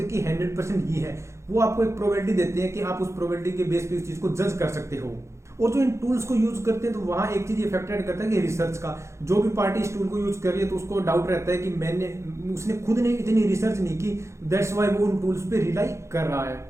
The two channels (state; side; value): late; left; 0.14 ms